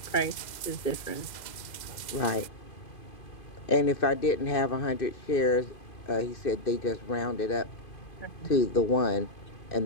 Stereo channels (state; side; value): late; right; 2.1 ms